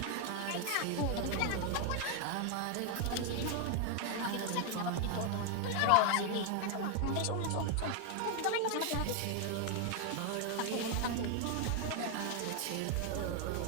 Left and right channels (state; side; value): different; both; correlation 0.01